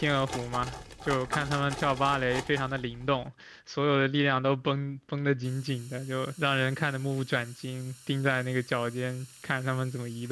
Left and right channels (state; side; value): identical; both; correlation 1.00